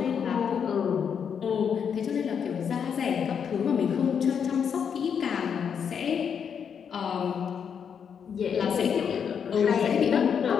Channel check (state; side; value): quieter; right; 7.3 dB